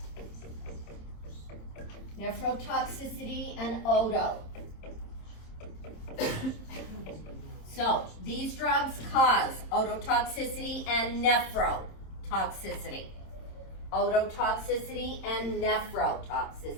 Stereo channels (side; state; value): right; late; 27 ms